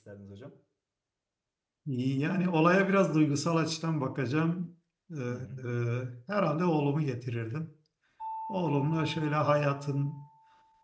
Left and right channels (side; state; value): both; identical; correlation 1.00